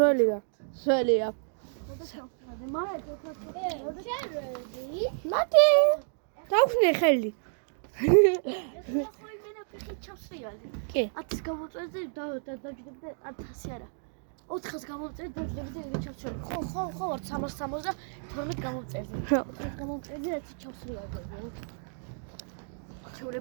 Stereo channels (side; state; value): left; silent; digital silence